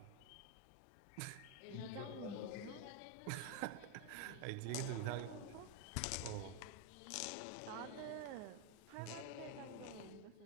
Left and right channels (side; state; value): both; different; correlation 0.01